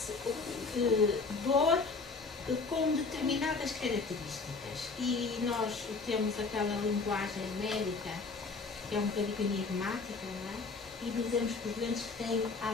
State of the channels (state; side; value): quieter; right; 4.3 dB